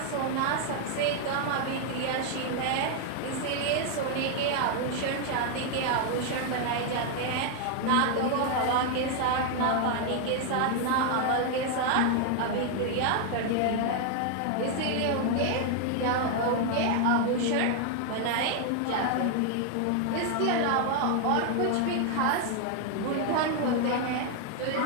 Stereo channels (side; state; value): both; different; correlation 0.00